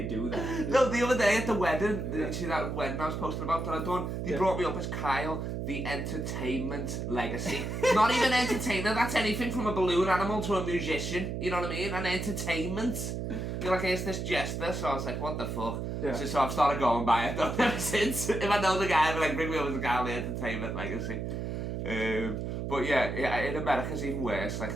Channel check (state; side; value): noise; right; hum, 3 dB below the sound